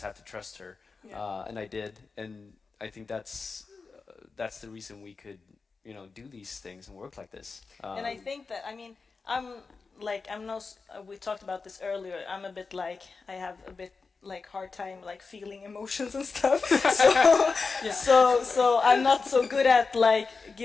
have to trust her, and I did, and I think that's the reason we could do these things and work like this. And I think that, I mean, we talked about this earlier, I'm a bit like, I have a bit like hard time like feeling emotions and stuff. So I'm not so good at like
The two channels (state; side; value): quieter; right; 4.5 dB